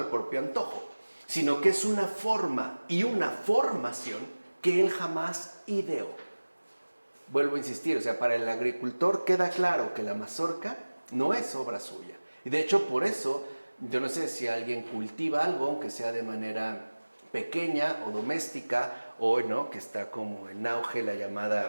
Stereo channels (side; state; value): both; inverted; correlation -1.00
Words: propio antojo, sino que es una forma y una formación que él jamás ideó. Vuelvo a insistir, o sea, para el agricultor queda claro que la mazorca no es obra suya. Y de hecho, por eso, yo no sé si alguien cultiva algo, aunque sea de manera pequeña o doméstica, hoy, ¿no?, que está como en auge la